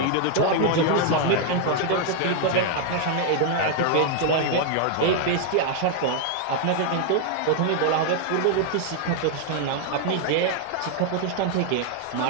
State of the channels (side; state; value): both; different; correlation 0.00